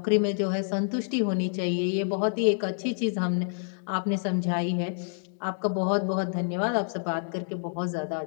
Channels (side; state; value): right; silent; digital silence